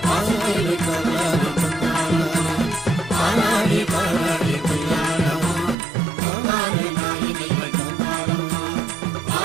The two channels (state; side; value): drops out; left; at 5.8 s